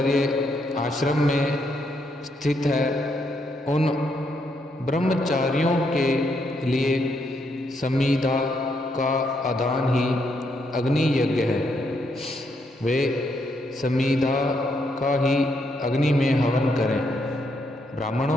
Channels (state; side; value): normal; both; correlation 0.76